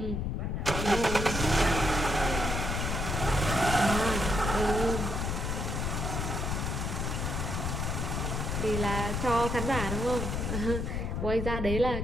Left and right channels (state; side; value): noise; left; rumble, 1 dB below the sound